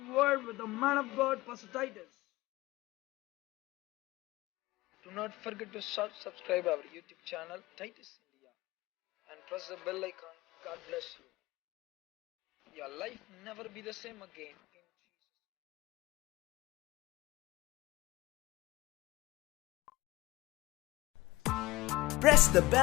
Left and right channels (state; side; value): quieter; right; 19.3 dB